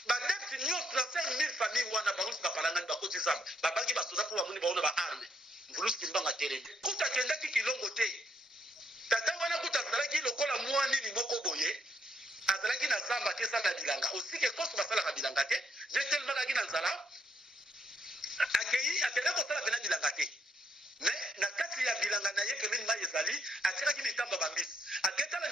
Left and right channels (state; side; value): normal; both; correlation 0.74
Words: badepti nyonso na 5000 famille wana bangosi bapalangani bakoti zamba babangi basoda mpo bamoni baona baarme mbulus kimbangu atelemi kuta akendaki kilongo te tata wana kuta azalaki lokola mwa nini moko boye azalaki na zamba te esala bilanga osike koso basalaka bilanga te je tellement akaki na nzala akendaki kosala pena bilanga te mais na kati ya bilanga na ye pembeni mai ezali atiraki mitambo bambisi aketala